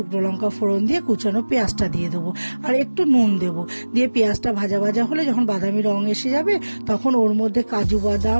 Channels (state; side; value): inverted; both; correlation -1.00